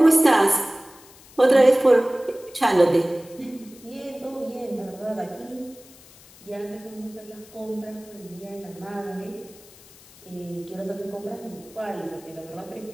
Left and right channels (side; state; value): left; noise; hiss, 23 dB below the sound